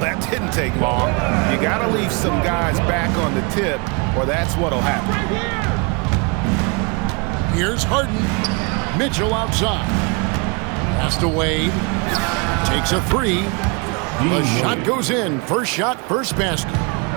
didn't take long. You got to leave some guys back on the tip, or that's what'll happen. Here's Harden. Mitchell outside. Pass to Wade. Takes a three. The shot goes in. First shot, first basket.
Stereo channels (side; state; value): left; quieter; 31.1 dB